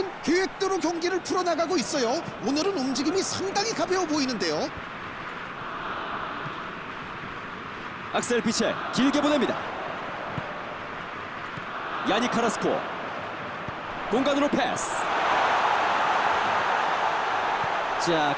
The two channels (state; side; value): identical; both; correlation 1.00